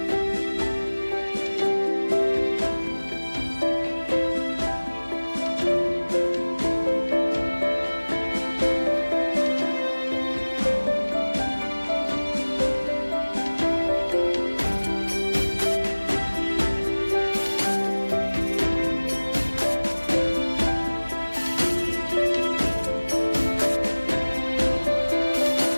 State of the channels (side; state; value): both; inverted; correlation -1.00